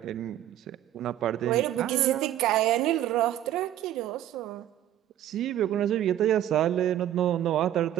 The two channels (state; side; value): quieter; left; 12.0 dB